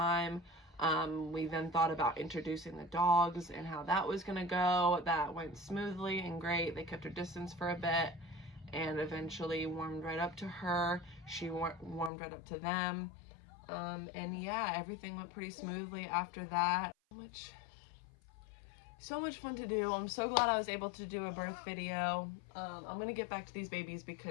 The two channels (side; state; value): right; drops out; at 12.1 s